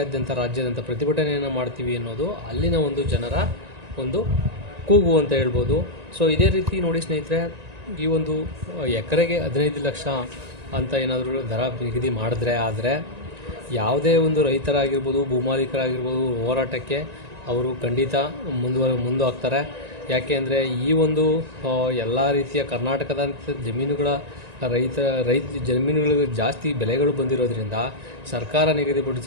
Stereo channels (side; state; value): left; late; 1.9 ms